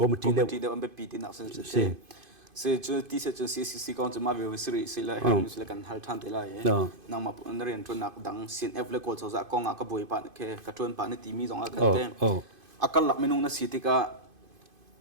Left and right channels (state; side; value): late; left; 2.5 ms